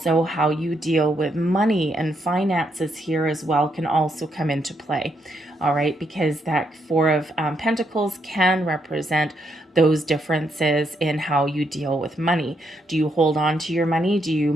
how you deal with money and finances here as well can also come into play. All right, because that Four of Pentacles can represent those differences in how you deal with money. Do you hold on to your money? Do you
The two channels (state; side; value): normal; both; correlation 0.77